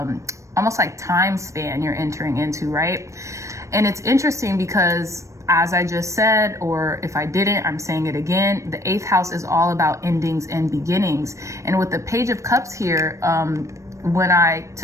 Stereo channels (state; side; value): late; left; 0.15 ms